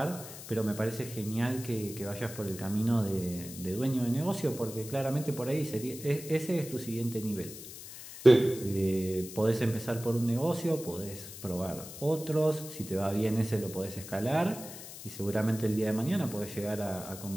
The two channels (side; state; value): left; noise; hiss, 13 dB below the sound